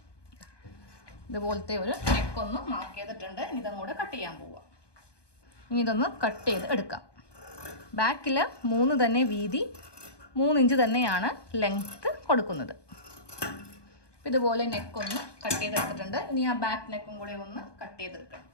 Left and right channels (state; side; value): late; right; 1.2 ms